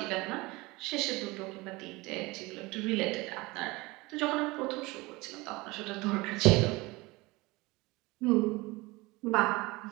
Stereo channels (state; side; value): quieter; left; 22.8 dB